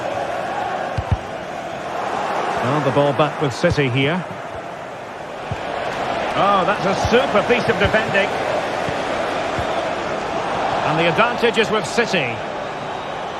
Well, the ball back with City here. Oh, that's a super piece of defending. And the advantage is with City.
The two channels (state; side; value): identical; both; correlation 1.00